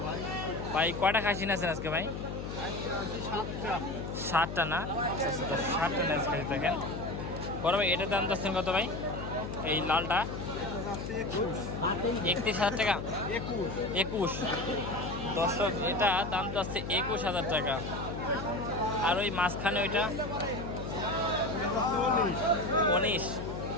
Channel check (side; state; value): left; noise; hum, 6 dB below the sound